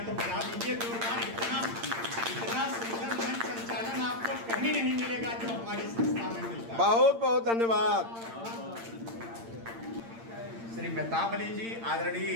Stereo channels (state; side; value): late; left; 8.8 ms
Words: तो बजा दीजिए जोरदार। इतना सुंदर मंच संचालन आपको कहीं नहीं मिलेगा जो हमारी संस्था में मिलता है। बहुत बहुत धन्यवाद। श्री मेहताब अली जी, आदरणीय